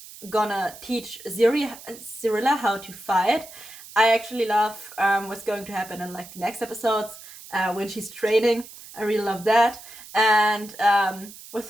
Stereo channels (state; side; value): noise; right; hiss, 17 dB below the sound